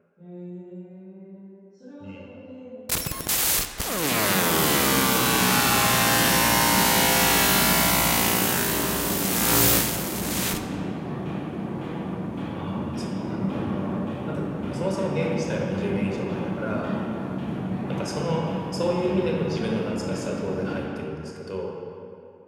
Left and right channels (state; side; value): identical; both; correlation 1.00